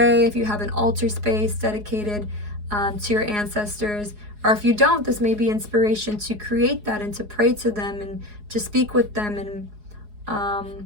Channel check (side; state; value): left; late; 4.8 ms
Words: if you have an altar space dedicated to your ancestors, or if you don't, this may be inspiration to create that and to pray to them and to speak with them and